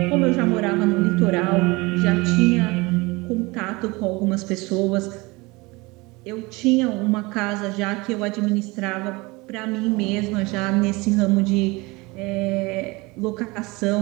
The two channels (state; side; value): quieter; left; 23.9 dB